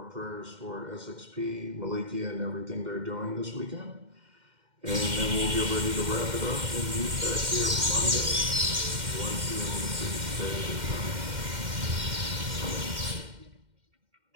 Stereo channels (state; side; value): late; left; 2.1 ms